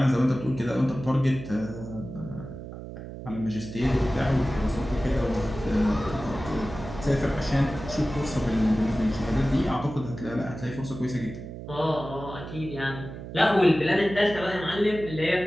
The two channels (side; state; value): right; noise; hum, 11 dB below the sound